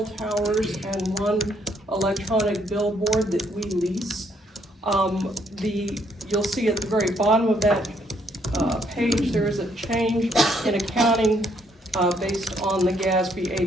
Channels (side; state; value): both; normal; correlation 0.70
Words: towers and 1 electronic billboard that we lease. You'll see at the very bottom of that page, there is a change in accounting based on the GASB